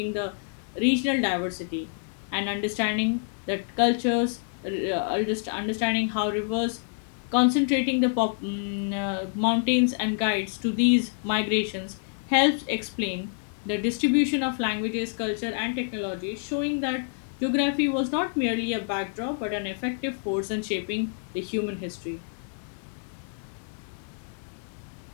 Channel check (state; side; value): silent; right; digital silence